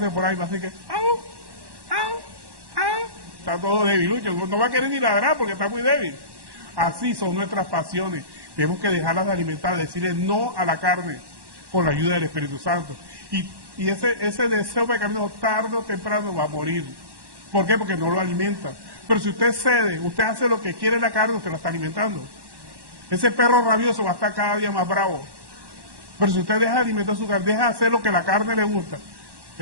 por ahí, va a decir que, ¡au! ¡Au! ¡Au! Está todo debilucho, no va a querer ni ladrar porque está muy débil. Así son nuestras pasiones. Tenemos que dejarlas de alimentar, decirle no a la carne con la ayuda del Espíritu Santo. Y ese deseo pecaminoso tarde o temprano va a morir. ¿Por qué? Porque no lo alimenta. Pero si usted cede, usted hace lo que quiere la carne, usted la está alimentando. Ese perro rabioso va a estar cada día más bravo. Pero si usted deja de alimentar su carne, deja de hacer lo que la carne le gusta,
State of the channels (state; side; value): late; left; 1.1 ms